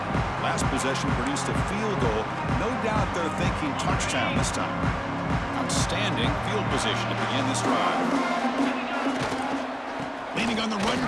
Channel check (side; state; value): both; identical; correlation 1.00